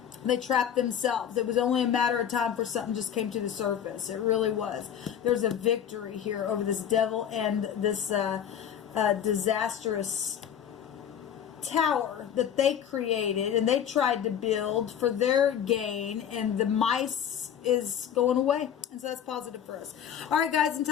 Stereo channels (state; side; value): quieter; right; 9.0 dB